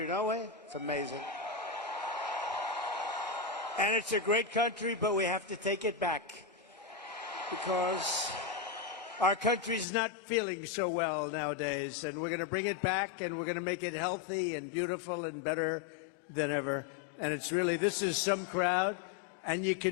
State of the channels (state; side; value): drops out; right; at 9.9 s